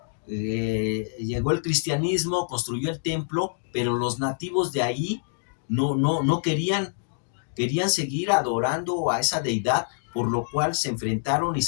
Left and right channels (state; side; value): silent; right; digital silence